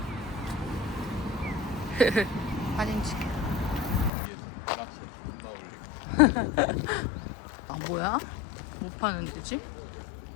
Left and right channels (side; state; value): right; drops out; at 4.1 s